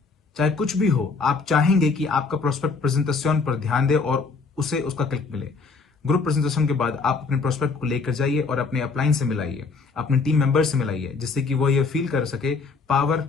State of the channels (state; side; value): quieter; right; 4.5 dB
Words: चाहे कुछ भी हो, आप चाहेंगे कि आपका प्रोस्पेक्ट प्रेजेंटेशन पर ध्यान दे और उसे उसका क्लिक मिले। ग्रुप प्रेजेंटेशन के बाद आप अपने प्रोस्पेक्ट को लेकर जाइए और अपने अपलाइन से मिलाइए, अपने टीम मेंबर से मिलाइए, जिससे कि वो ये फील कर सके, पावर